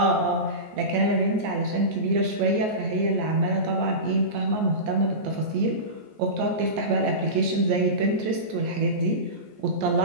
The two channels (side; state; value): left; late; 14 ms